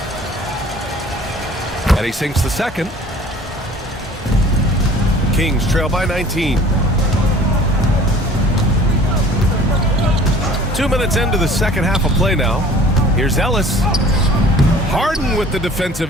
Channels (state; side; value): normal; both; correlation 0.49